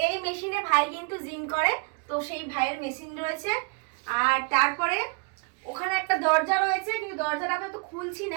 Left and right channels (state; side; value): quieter; left; 34.2 dB